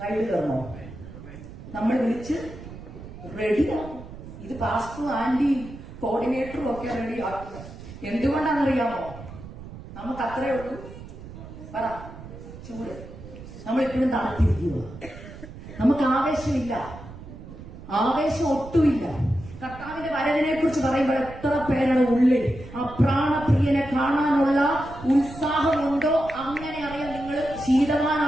റൈഡ് കയറണോ? നമ്മൾ വിളിച്ച് റെഡിയാവും. ഇത് പാസ്റ്ററും ആന്റിയും കോർഡിനേറ്ററും ഒക്കെ റെഡി ആക്കുന്നത് എന്തുകൊണ്ടാണെന്നറിയാമോ? നമുക്ക് അത്രേ ഉള്ളൂ പറ, ചൂട്. നമ്മളിപ്പോഴും തണുത്തിരിക്കുക, നമുക്ക് ആവേശമില്ല, ആവേശം ഒട്ടുമില്ല. കർത്താവിന്റെ വരവിനെ കുറിച്ച് പറയുമ്പോൾ എത്ര പേരുടെ ഉള്ളിൽ ആ പ്രാണപ്രിയനെ കാണാനുള്ള ഉത്സാഹമുണ്ടോ? അങ്ങനെ അറിയാം നിങ്ങൾ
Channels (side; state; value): right; noise; rumble, 14 dB below the sound